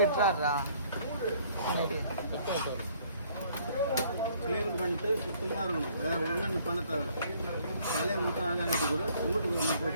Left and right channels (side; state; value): both; inverted; correlation -0.61